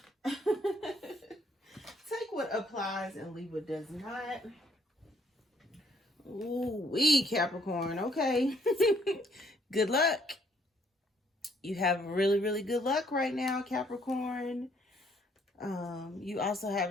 Take what applies and leave what does not. Ooh, Capricorn. Okay. Good luck. You have really, really good luck right now, Capricorn. You also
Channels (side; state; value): both; normal; correlation 0.66